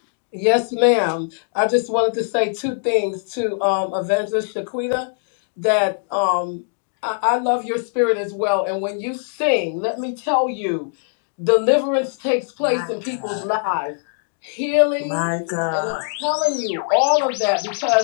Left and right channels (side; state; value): right; silent; digital silence